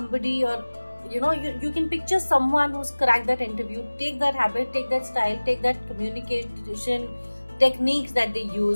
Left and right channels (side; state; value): both; inverted; correlation -1.00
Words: or you can picture someone who's cracked that interview. Take that habit, take that style, take that communication techniques that they